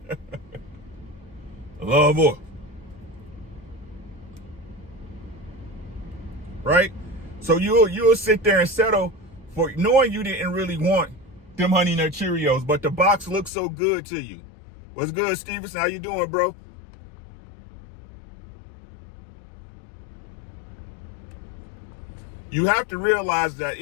Love voice. Right? So you'll sit there and settle for knowing you didn't really want them Honey Nut Cheerios, but the box looks so good to you. What's good, Stevenson? How you doing, bro? You have to realize that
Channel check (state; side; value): drops out; right; at 13.5 s